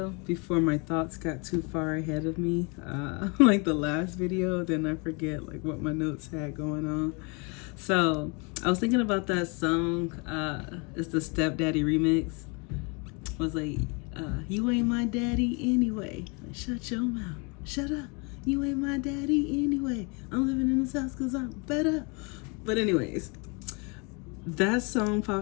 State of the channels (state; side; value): quieter; right; 31.9 dB